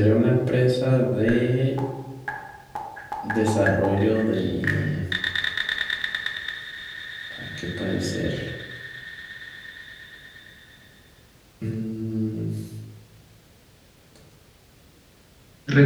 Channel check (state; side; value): identical; both; correlation 1.00